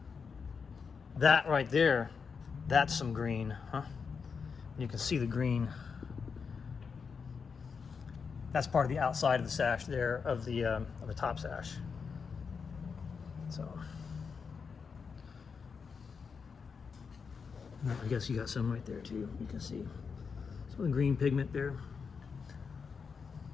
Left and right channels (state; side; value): quieter; right; 5.7 dB